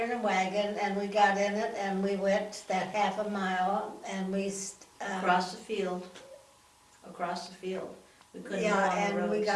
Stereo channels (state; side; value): identical; both; correlation 1.00